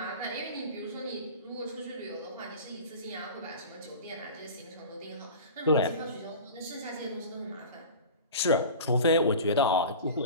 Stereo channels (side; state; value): both; inverted; correlation -0.35